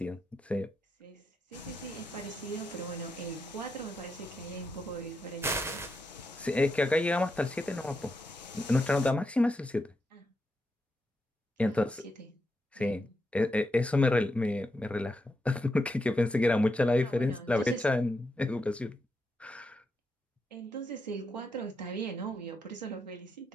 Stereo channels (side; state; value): both; normal; correlation 0.84